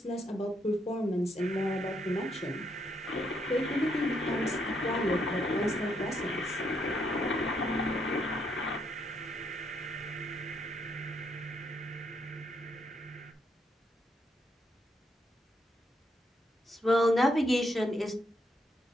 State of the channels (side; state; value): both; normal; correlation 0.75